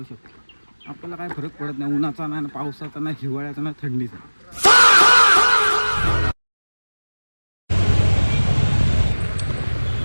शकतो. आपल्याला काय फरक पडत नाही, उन्हाचा नाही, पावसाचा नाही, हिवाळ्याचा नाही, थंडीचा.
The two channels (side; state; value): both; inverted; correlation -1.00